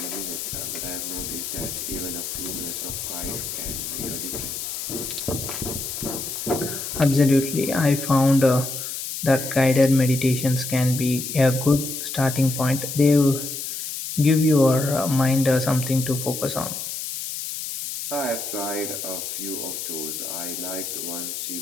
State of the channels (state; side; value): noise; left; hiss, 6 dB below the sound